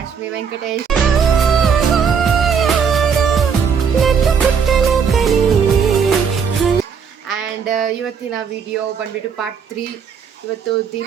Venkatesh. And ಇವತ್ತಿನ video ಬಂದ್ಬಿಟ್ಟು part 3. ಇವತ್ತು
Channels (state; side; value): quieter; left; 6.6 dB